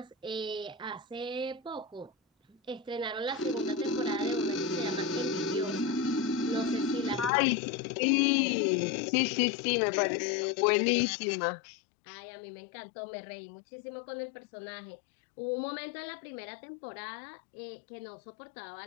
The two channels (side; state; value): right; drops out; at 7.3 s